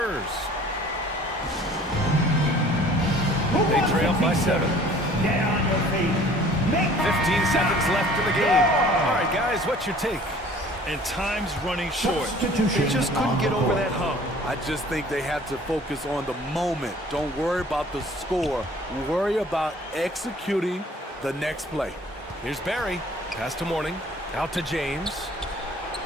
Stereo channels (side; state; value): both; normal; correlation 0.51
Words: They trail by 7. Get on your feet. 15 seconds left in the game. All right, guys, what's your take? And time's running short. Substitution They just couldn't get over that hump. I just think they have to focus on the moment. Don't worry about the score. Worry about executing the next play. Here's Barry. Pass to Morning. Out to James.